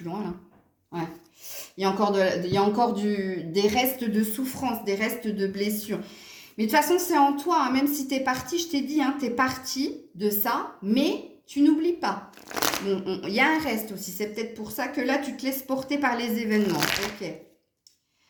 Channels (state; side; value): identical; both; correlation 1.00